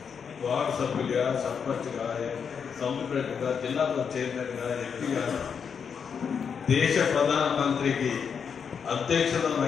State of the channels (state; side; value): quieter; right; 6.7 dB